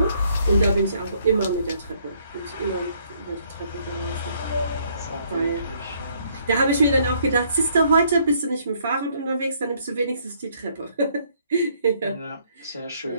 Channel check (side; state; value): both; inverted; correlation -0.66